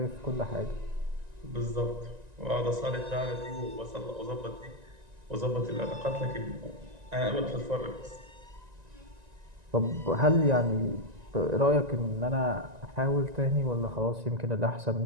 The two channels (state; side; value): late; left; 1.9 ms